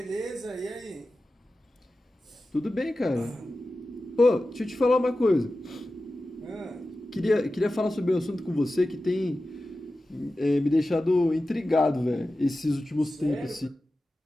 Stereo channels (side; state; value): both; normal; correlation 0.94